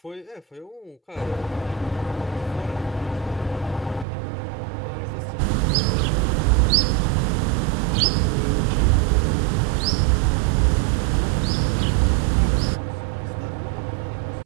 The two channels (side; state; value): left; drops out; at 4.0 s